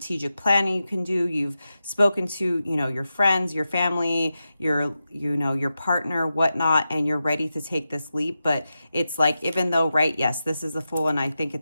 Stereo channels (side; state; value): both; inverted; correlation -0.91